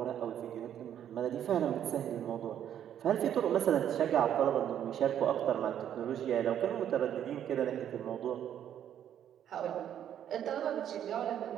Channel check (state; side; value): quieter; left; 10.0 dB